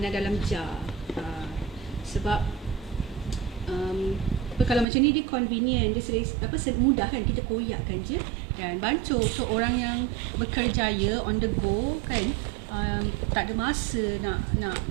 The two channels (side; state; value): left; drops out; at 4.9 s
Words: dalam jar. Sebab kalau macam ni dia convenient, dia mudah kan, kita koyakkan je dan bancuh. So orang yang bekerjaya on the go kan, tak ada masa nak